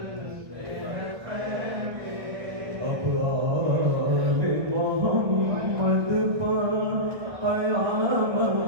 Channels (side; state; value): left; late; 1.4 ms